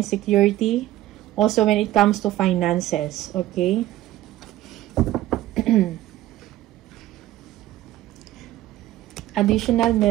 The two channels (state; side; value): quieter; left; 14.7 dB